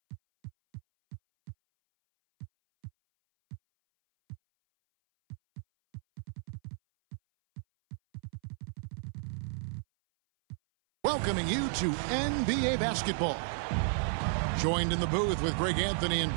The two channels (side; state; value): left; silent; 56 dB below the other